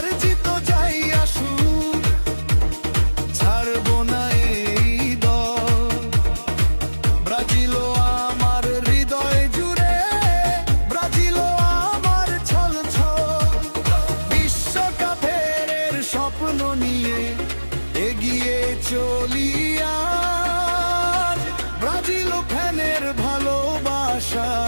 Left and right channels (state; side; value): inverted; both; correlation -1.00